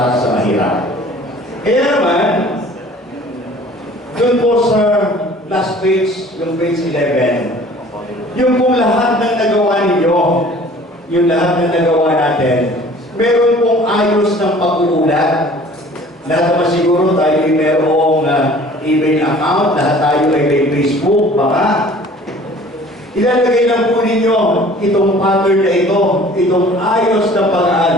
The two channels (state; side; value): normal; both; correlation 0.49